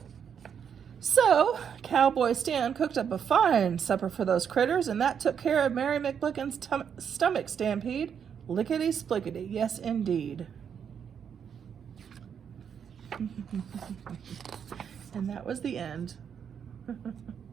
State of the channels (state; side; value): quieter; left; 7.7 dB